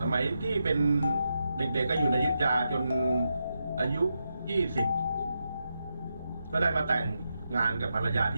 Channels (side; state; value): both; inverted; correlation -0.85